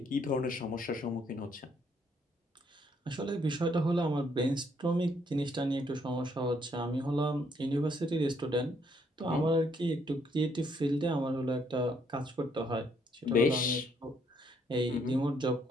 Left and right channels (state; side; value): normal; both; correlation 0.70